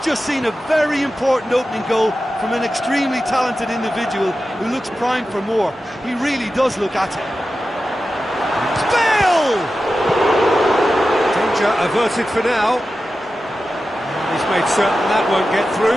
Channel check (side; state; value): both; normal; correlation 0.93